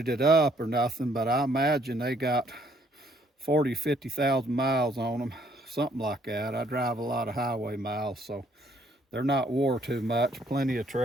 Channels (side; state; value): both; normal; correlation 0.65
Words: it up or nothing, but I imagine they got 40, 50,000 miles on them, something like that. I drive a lot of highway miles, so they're not wore too much, plenty of